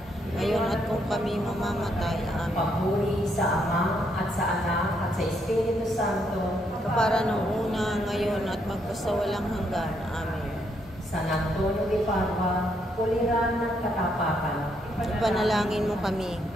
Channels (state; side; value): normal; both; correlation 0.75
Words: ngayon at kung kami mamamatay. Amen. Papuri sa Ama, at sa Anak, at sa Espiritu Santo, Kapara nung una, ngayon at magpasawalang hanggan. Amen. San Antonio de Padua, kuliran ng katapakan. Ipanalangin mo kami.